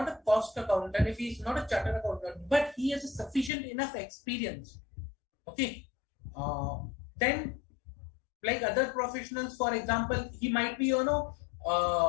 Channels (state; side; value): drops out; right; at 3.5 s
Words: a cost accountant, if he is not a chartered accountant, but he has a sufficient enough experience. Okay. Then like other professionals, for example, he might be,